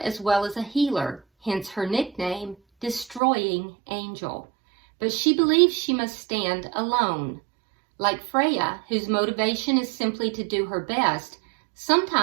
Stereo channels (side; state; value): left; drops out; at 3.2 s